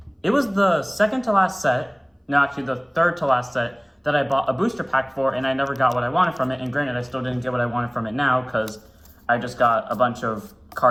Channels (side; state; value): both; identical; correlation 1.00